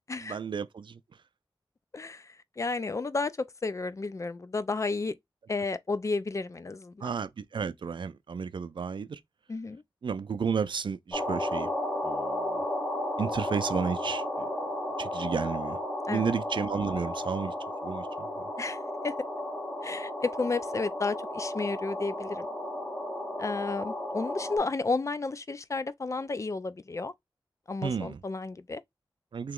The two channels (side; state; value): both; normal; correlation 0.70